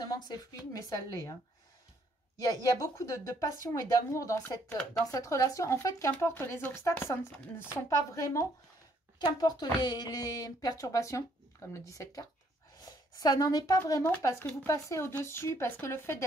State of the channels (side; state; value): both; normal; correlation 0.67